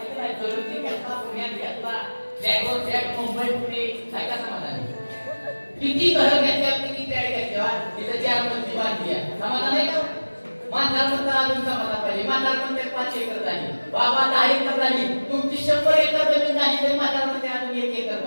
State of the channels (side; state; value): both; inverted; correlation -1.00